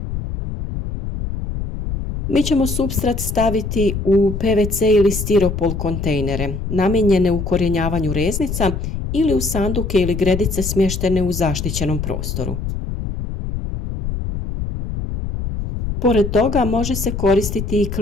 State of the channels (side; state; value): left; noise; rumble, 5 dB below the sound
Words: Mi ćemo supstrat staviti u PVC ili stiropol kontejnere, namijenjene ukorijenjavanju reznica ili u sanduke ili gredice smještene u zaštićenom prostoru. Pored toga može se koristiti i